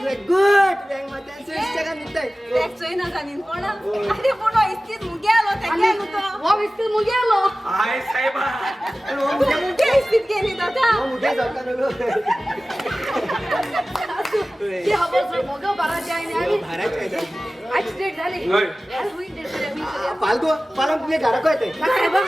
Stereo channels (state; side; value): normal; both; correlation 0.96